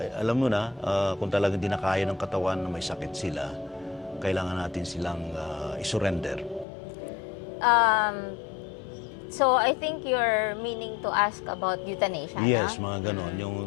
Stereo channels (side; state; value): right; drops out; at 6.7 s